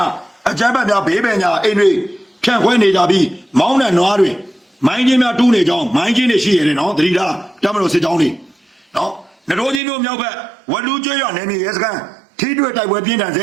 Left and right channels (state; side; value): drops out; left; at 9.8 s